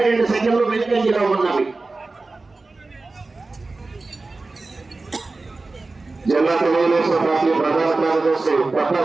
సెకండ్లు వెనుకంజలో ఉన్నవి. జిల్లా తెలుగుదేశం పార్టీ ప్రధాన కార్యదర్శి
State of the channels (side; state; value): left; quieter; 3.5 dB